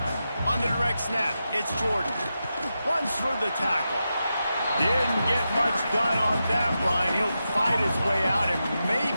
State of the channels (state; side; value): inverted; both; correlation -0.89